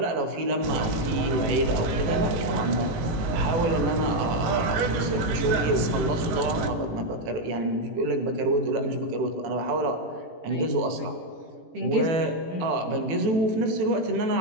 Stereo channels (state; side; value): late; left; 18 ms